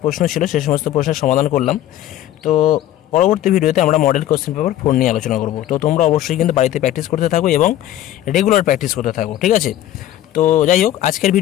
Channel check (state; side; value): quieter; right; 13.0 dB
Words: প্রশ্ন ছিল সে সমস্ত প্রশ্নের সমাধান করলাম। তো পরবর্তী ভিডিওতে আমরা মডেল কোশ্চেন পেপার 4 নিয়ে আলোচনা করব। তো তোমরা অবশ্যই কিন্তু বাড়িতে প্র্যাকটিস করতে থাকো এবং রেগুলার প্র্যাকটিস করতে থাকো, ঠিক আছে। তো যাই হোক, আজকের